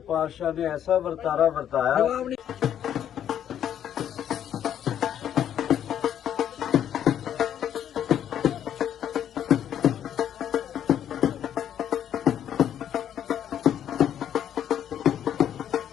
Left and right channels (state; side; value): quieter; right; 9.9 dB